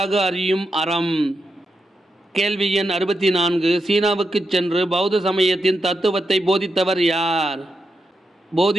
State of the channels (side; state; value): both; normal; correlation 0.86